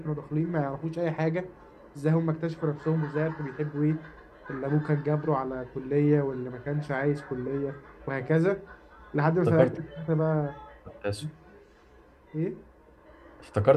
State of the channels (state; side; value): identical; both; correlation 1.00